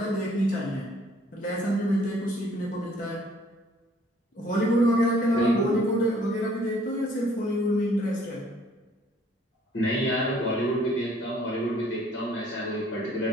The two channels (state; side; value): normal; both; correlation 0.60